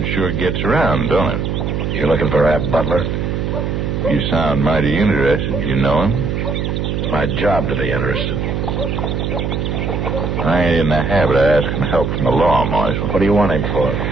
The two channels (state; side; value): noise; right; hum, 1 dB below the sound